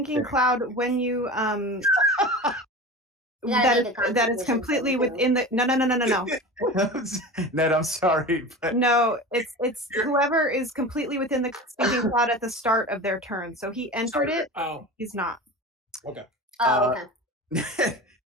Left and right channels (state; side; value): normal; both; correlation 0.32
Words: cloud when you gotta make a that is constitution completely saving within the no. Ned, I'm sorry, but No, it's whoever is completely within the stinking cloud at the start of their turn. So he entered it. Oh, He's not. okay. Oh, okay.